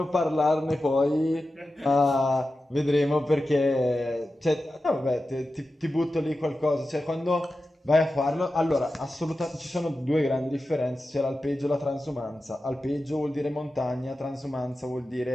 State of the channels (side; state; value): both; normal; correlation 0.93